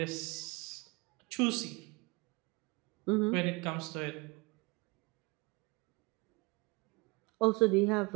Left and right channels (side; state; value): left; quieter; 26.7 dB